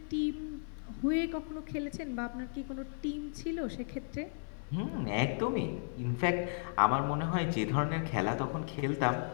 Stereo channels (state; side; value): silent; right; 55 dB below the other